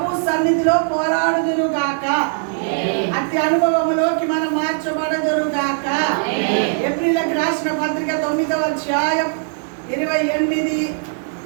సన్నిధిలో పోరాడుదురుగాక. అట్టి అనుభవంలోకి మనం మార్చబడదురుగాక. ఏప్రిల్కి రాసిన పత్రిక 9వ అధ్యాయం 28.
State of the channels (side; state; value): left; silent; digital silence